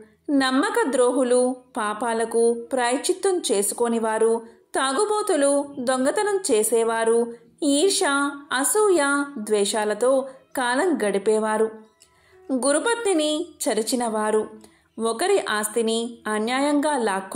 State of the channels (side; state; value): both; identical; correlation 1.00